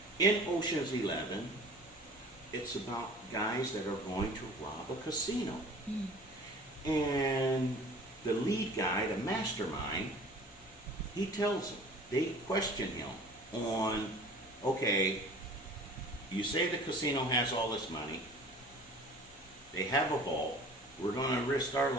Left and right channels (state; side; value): normal; both; correlation 0.45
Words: In Ocean's 11, it's about guys that are going to rob a casino. And the lead guy, the mastermind, he tells them, they question him on, okay, you say the casino has all this money, they have a vault, we're going to risk our